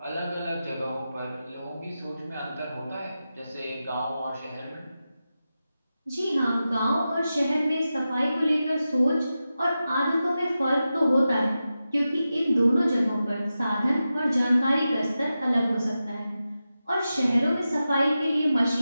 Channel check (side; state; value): both; inverted; correlation -0.92